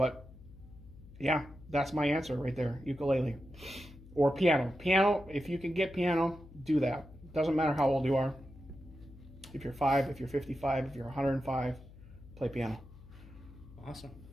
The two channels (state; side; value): noise; left; hum, 19 dB below the sound